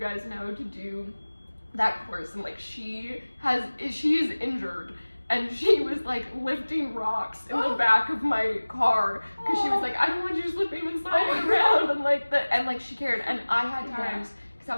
know, to do that course. And, like, she is injured. and she was like lifting rocks in the back of my car because she was like, I don't want you just lifting and sliding around, and like she cared. And I had times because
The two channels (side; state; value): both; inverted; correlation -1.00